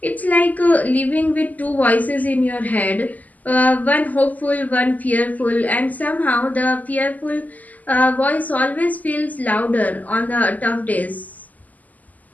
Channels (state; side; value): late; right; 0.079 ms